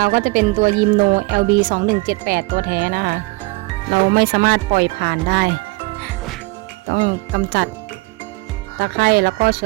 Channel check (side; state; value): left; quieter; 24.5 dB